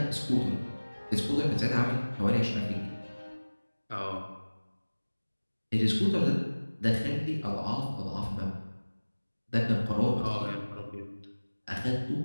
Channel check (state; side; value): inverted; both; correlation -1.00